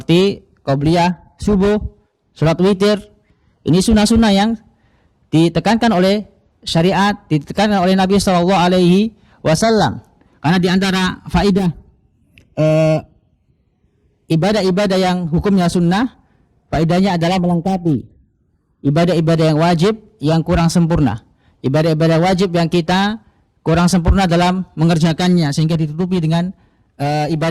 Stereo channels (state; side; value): identical; both; correlation 1.00